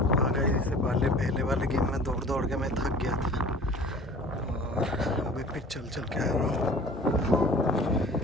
आ गए इससे पहले वाले गेम में दौड़ के मैं थक गया था और अभी फिर चल के आ रहा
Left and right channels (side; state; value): both; normal; correlation 0.45